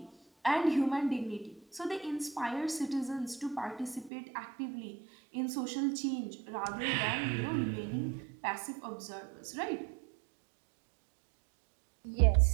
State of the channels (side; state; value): left; drops out; at 4.1 s